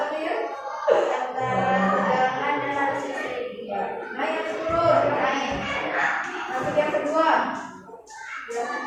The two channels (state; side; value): identical; both; correlation 1.00